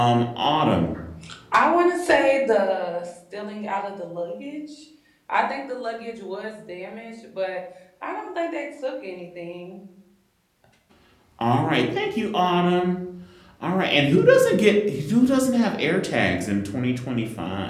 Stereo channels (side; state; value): both; identical; correlation 1.00